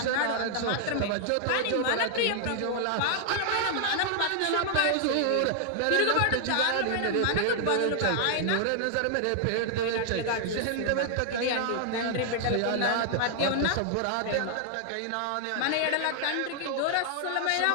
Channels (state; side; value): different; both; correlation -0.01